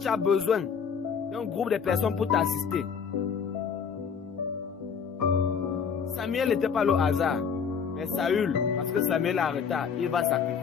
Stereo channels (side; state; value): right; quieter; 6.5 dB